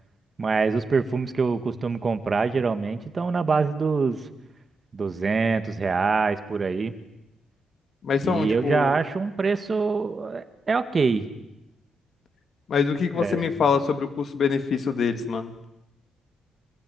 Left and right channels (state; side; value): normal; both; correlation 0.83